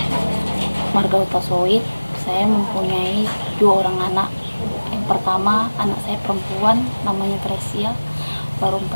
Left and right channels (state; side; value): inverted; both; correlation -1.00